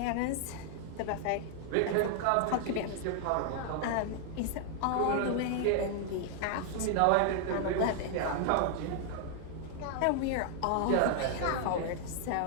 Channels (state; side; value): different; both; correlation 0.00